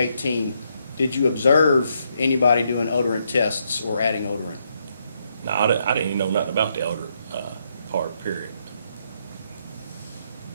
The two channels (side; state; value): both; inverted; correlation -0.77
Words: did you observe anybody doing odorant tests or adding odorant? No, I didn't even know nothing about the odor part, period.